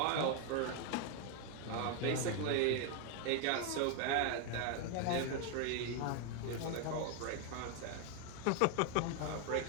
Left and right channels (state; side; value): different; both; correlation 0.01